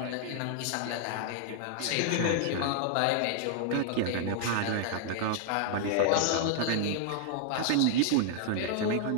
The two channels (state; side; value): different; both; correlation -0.01